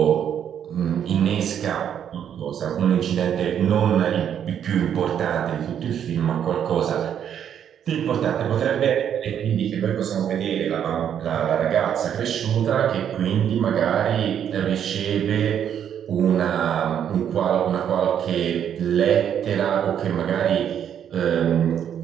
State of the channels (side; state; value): left; quieter; 9.1 dB